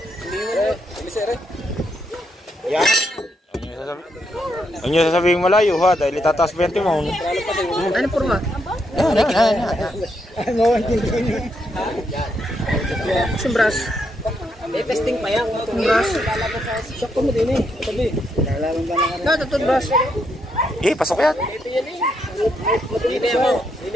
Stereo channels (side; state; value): both; normal; correlation 0.78